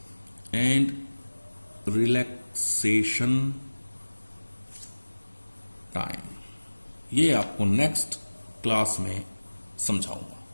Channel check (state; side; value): inverted; both; correlation -1.00